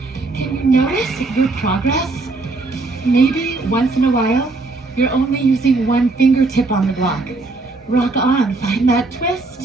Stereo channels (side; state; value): left; quieter; 3.4 dB